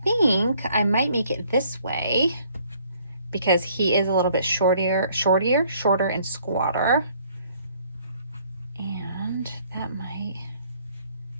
think I might make it this way because he is a little bit shorter and squatter, and that might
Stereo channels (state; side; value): inverted; both; correlation -0.62